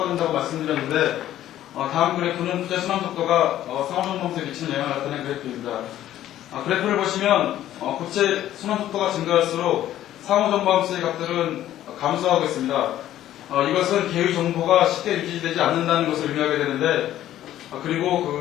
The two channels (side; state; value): right; quieter; 12.7 dB